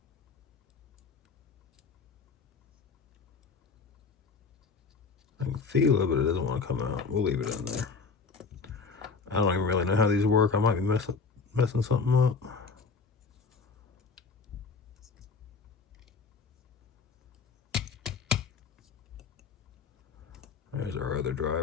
I can feel it, but it doesn't want to come out. We'll leave it in there. I don't even really know how these work. I might be messing something up. There's our other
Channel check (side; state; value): right; quieter; 4.8 dB